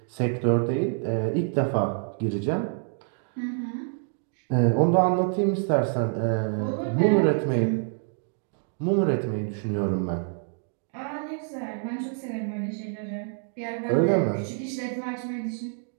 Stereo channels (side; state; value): left; silent; 60 dB below the other